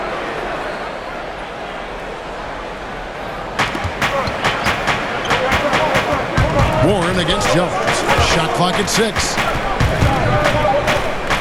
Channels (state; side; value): identical; both; correlation 1.00